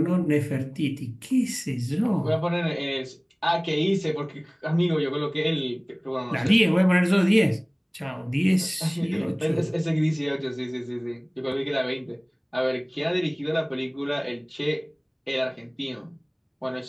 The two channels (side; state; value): both; identical; correlation 1.00